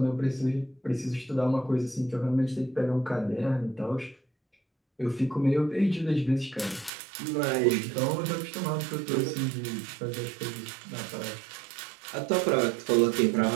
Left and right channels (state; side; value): drops out; left; at 6.9 s